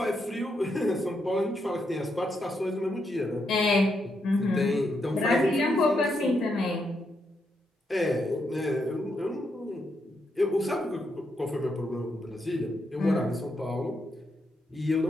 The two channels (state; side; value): normal; both; correlation 0.80